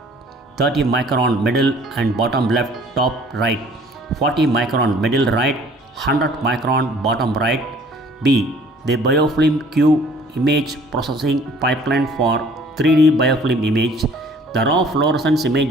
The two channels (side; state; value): both; normal; correlation 0.54